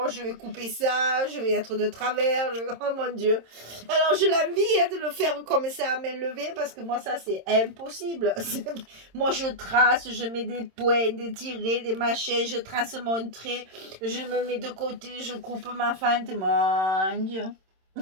je vais couper ça, je vais être de travers. Oh mon Dieu. Alors, je l'envie de le faire comme ça à main levée parce que moi, ça, c'est impossible. Moi, je trace, je mets des points, des tirets, des machins, je trace mon trait, je me mets de côté, je coupe ma fente. Mon Dieu.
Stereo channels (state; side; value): late; left; 26 ms